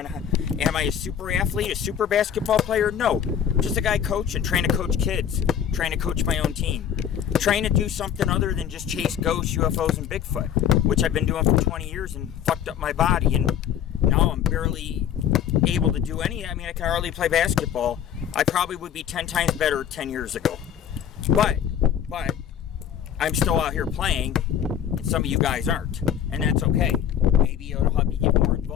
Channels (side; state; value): right; quieter; 9.2 dB